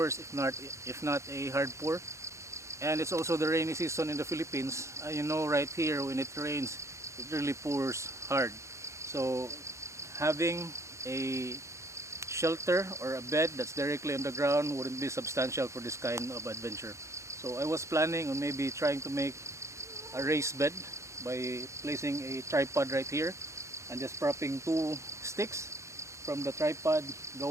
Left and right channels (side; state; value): left; late; 0.14 ms